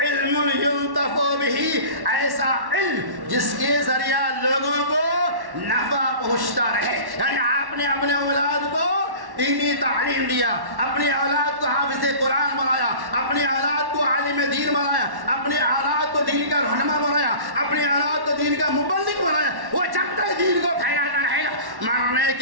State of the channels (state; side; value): late; left; 1.1 ms